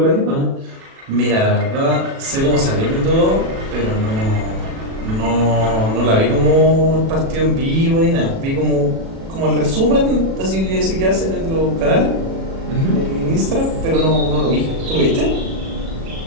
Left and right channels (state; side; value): late; left; 37 ms